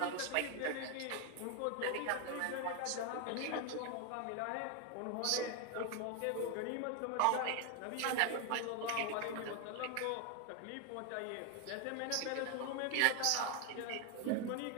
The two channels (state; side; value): different; both; correlation 0.01